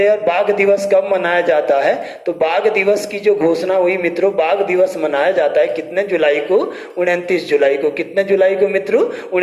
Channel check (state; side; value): identical; both; correlation 1.00